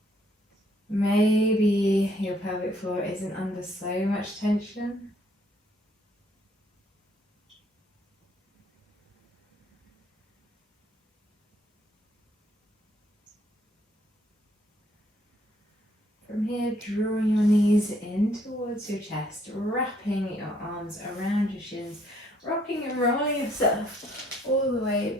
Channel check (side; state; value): both; normal; correlation 0.66